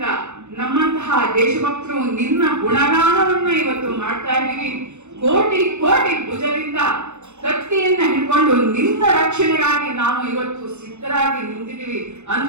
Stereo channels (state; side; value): late; left; 0.83 ms